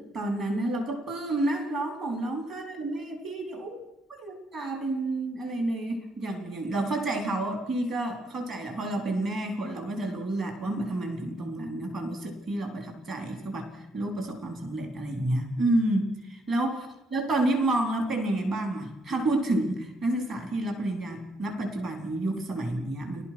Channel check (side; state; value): both; normal; correlation 0.74